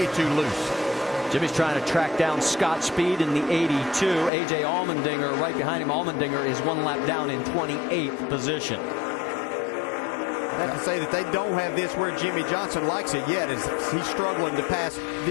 too loose. Jimmy's trying to track down Scott Speed in the 82. A.J. Allmendinger right behind him. Allmendinger is 1 lap down in 28th position. I have to say that they don't have this where Jimmy Johnson likes it yet, as he's struggling to pass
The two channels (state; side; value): drops out; right; at 4.3 s